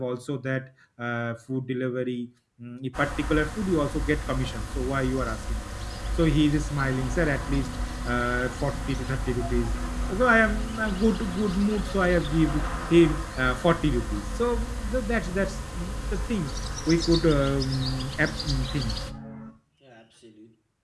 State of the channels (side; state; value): both; identical; correlation 1.00